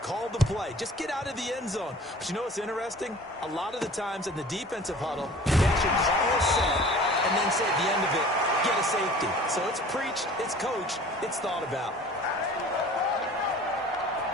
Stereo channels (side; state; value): both; normal; correlation 0.45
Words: the play. Just get out of the end zone. But you know what's interesting? A lot of the times in the defensive huddle, they actually call a set and then say at the end of it, get a safety. So it's preached, it's coached, it's thought about.